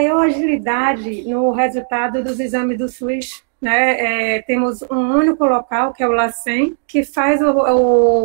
agilidade no resultado dos exames do SUS né, temos um único local, que é o LACEN, que faz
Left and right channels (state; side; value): silent; left; digital silence